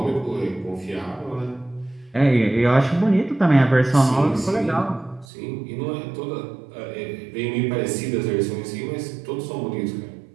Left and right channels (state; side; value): drops out; left; at 5.2 s